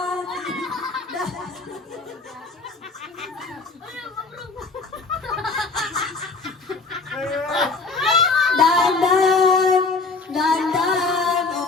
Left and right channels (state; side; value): quieter; right; 4.1 dB